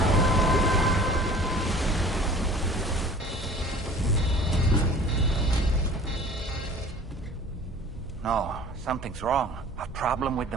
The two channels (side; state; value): both; normal; correlation 0.45